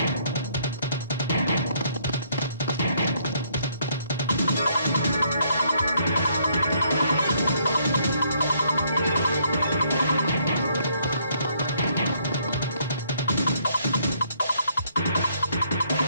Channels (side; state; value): both; inverted; correlation -0.68